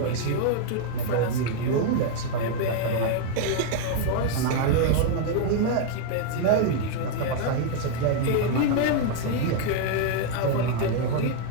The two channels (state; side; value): different; both; correlation 0.00